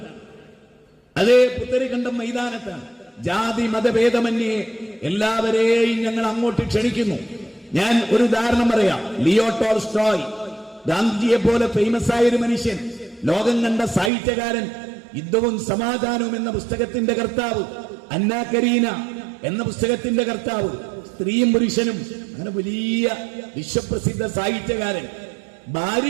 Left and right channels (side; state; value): left; drops out; at 14.1 s